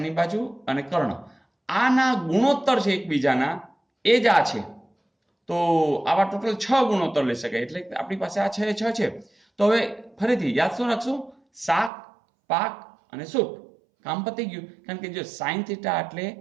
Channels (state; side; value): drops out; left; at 11.9 s